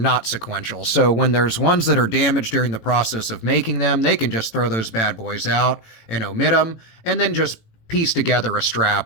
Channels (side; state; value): right; late; 18 ms